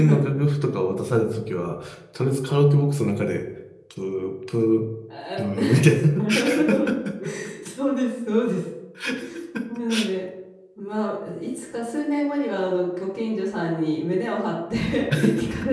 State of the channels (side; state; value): both; identical; correlation 1.00